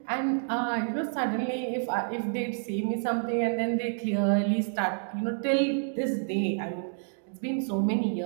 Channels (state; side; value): silent; left; digital silence